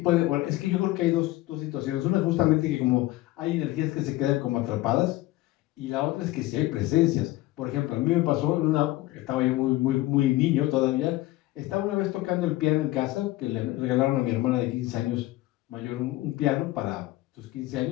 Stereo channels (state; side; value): quieter; right; 17.5 dB